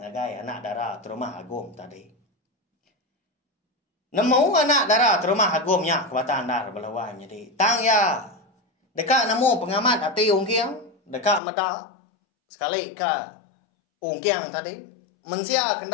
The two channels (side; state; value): right; drops out; at 11.4 s